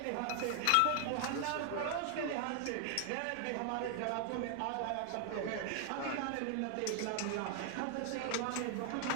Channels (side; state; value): both; different; correlation 0.00